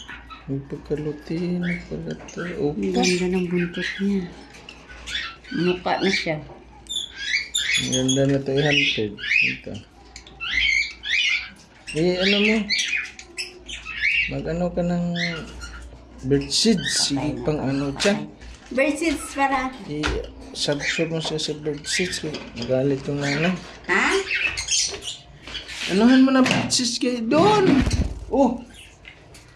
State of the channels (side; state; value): both; identical; correlation 1.00